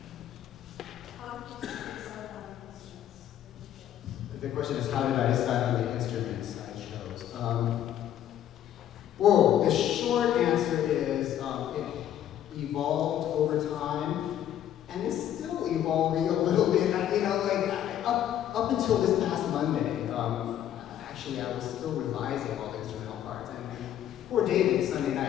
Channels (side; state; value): right; quieter; 11.0 dB